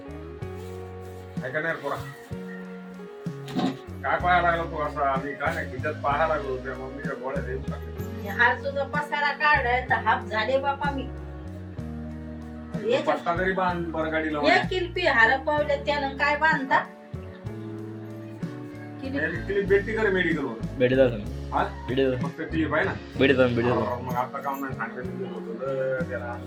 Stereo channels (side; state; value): both; identical; correlation 1.00